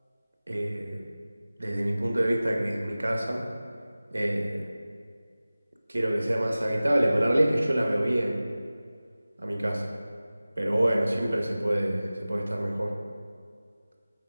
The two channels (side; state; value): both; inverted; correlation -0.97